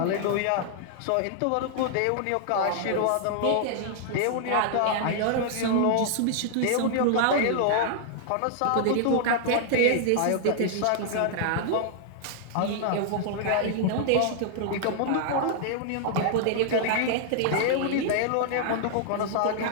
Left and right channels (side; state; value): both; different; correlation -0.01